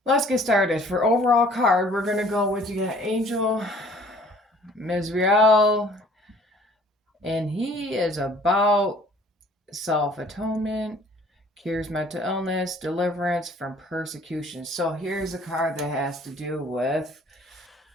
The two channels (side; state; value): both; normal; correlation 0.55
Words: let's get started. For overall card, we're gonna go with, you got Angel Mizrael, and he is about self atonement, cures mental illness, deliverance from persecution. So here's a card that has to do with,